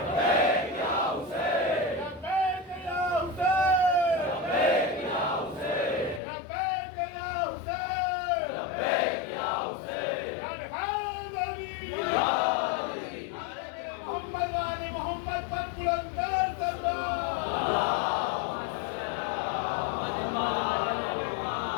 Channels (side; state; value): right; drops out; at 6.2 s